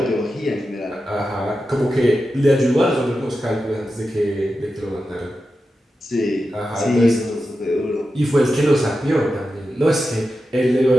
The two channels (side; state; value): both; normal; correlation 0.91